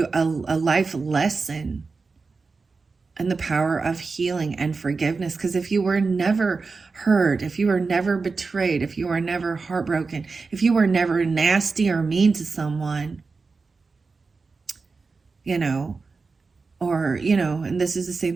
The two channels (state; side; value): quieter; left; 4.3 dB